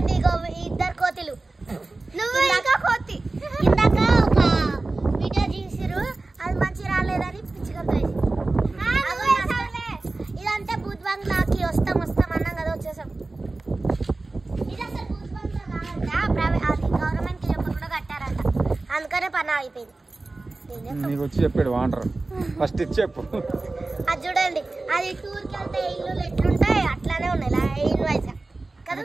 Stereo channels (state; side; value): quieter; left; 3.3 dB